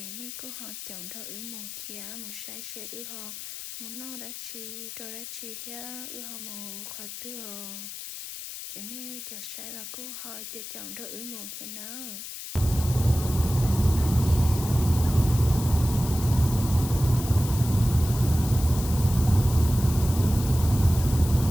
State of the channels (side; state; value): left; noise; hiss, 10 dB below the sound